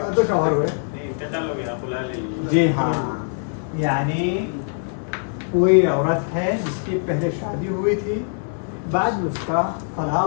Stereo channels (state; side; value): silent; right; digital silence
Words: 2 شوہر ہوئے؟ جی ہاں. یعنی کوئی عورت ہے جس کی پہلے شادی ہوئی تھی، بعد میں اس کا